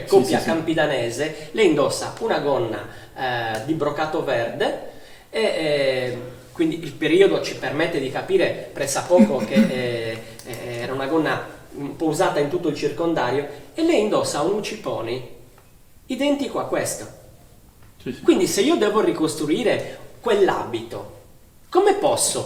coppia Sì. campidanese, lei indossa una gonna di brocato verde e quindi il periodo ci permette di capire pressappoco che era una gonna un po' usata in tutto il circondario, e lei indossa un uciponi identico a questo. Sì. Quindi se io devo ricostruire quell'abito, come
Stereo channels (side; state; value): both; identical; correlation 1.00